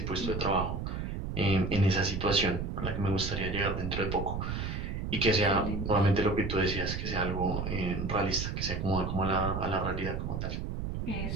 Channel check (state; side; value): noise; right; rumble, 3 dB below the sound